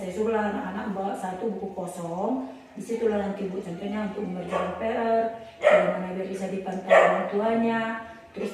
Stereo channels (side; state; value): both; identical; correlation 1.00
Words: suruhlah anak-anak bawa satu buku kosong, disitulah nanti Bu contohnya untuk mengerjakan PR, bagaimana biar bisa dipantau orang tuanya. Terus